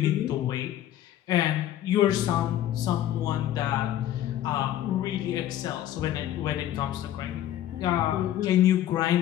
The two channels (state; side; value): quieter; right; 12.3 dB